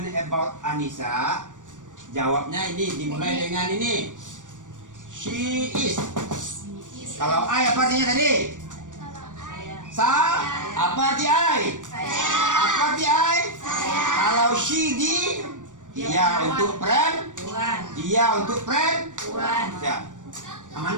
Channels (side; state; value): left; late; 0.87 ms